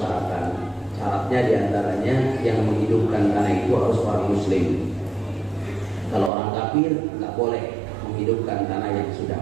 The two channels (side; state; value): left; drops out; at 6.3 s